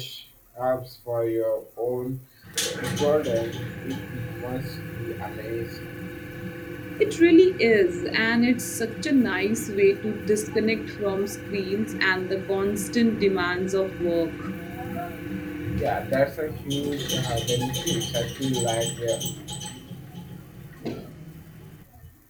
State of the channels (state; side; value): identical; both; correlation 1.00